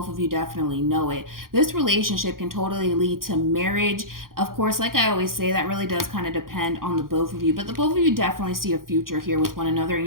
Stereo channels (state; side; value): late; left; 0.91 ms